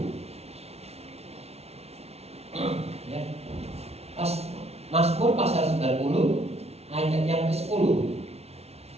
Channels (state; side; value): late; left; 0.31 ms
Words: Ya. Mazmur pasal 90 ayat yang ke-10.